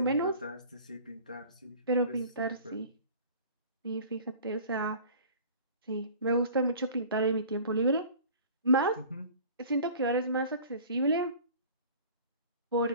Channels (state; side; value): inverted; both; correlation -0.44